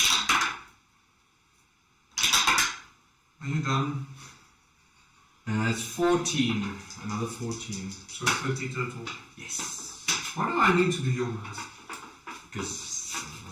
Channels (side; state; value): both; identical; correlation 1.00